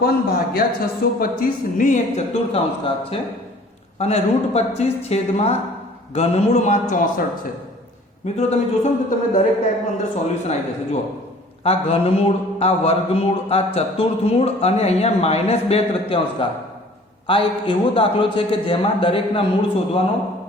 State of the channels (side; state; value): both; normal; correlation 0.51